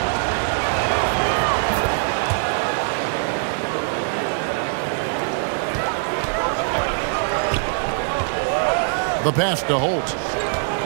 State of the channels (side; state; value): left; silent; 64 dB below the other